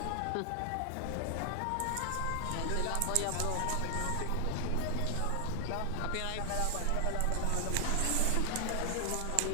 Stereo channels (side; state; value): both; different; correlation 0.00